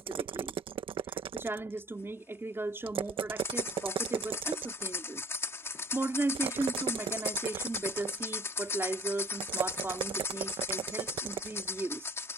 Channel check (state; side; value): normal; both; correlation 0.52